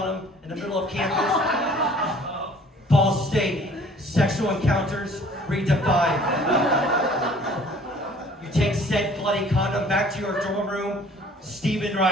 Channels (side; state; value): both; normal; correlation 0.53